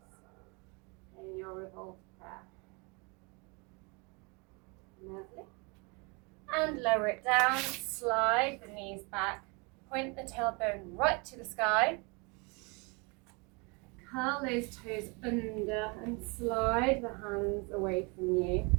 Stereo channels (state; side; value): quieter; left; 30.6 dB